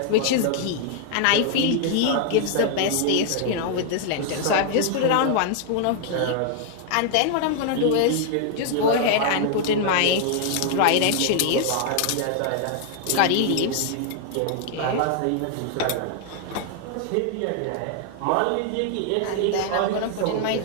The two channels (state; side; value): different; both; correlation 0.00